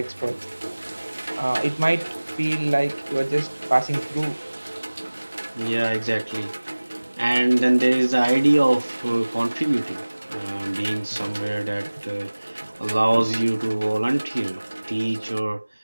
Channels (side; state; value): both; inverted; correlation -1.00